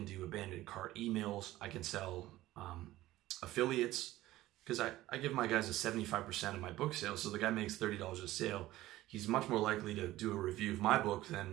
do abandoned cart emails. I can sell affiliates, because I give my guys a 75% of my book sales. So the guy makes $30 a sale. He's much more likely to do a review of my book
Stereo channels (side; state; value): left; quieter; 16.1 dB